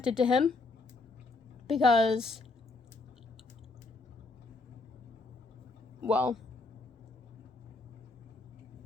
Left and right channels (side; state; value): right; quieter; 3.5 dB